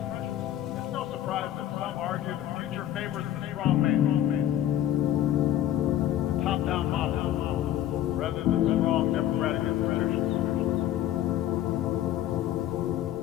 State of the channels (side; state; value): right; quieter; 12.1 dB